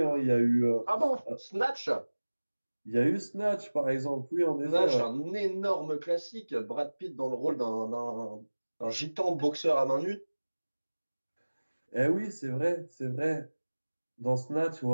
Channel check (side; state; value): both; inverted; correlation -1.00